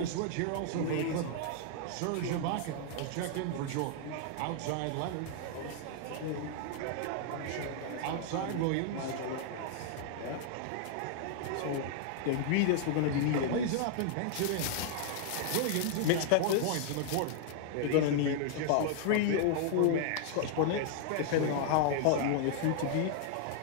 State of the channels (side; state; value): both; different; correlation -0.01